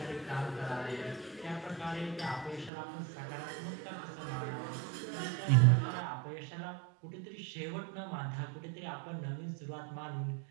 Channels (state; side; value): drops out; left; at 2.7 s